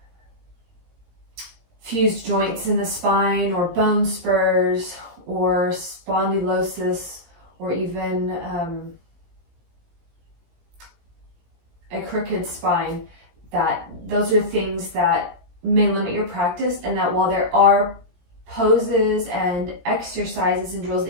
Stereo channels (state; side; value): late; left; 17 ms